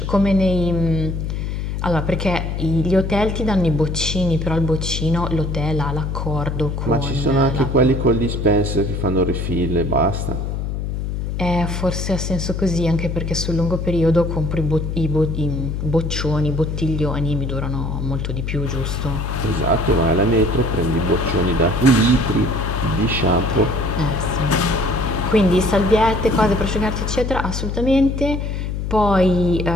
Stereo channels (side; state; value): left; noise; hum, 3 dB below the sound